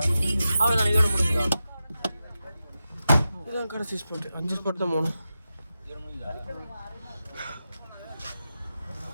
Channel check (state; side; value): inverted; both; correlation -0.91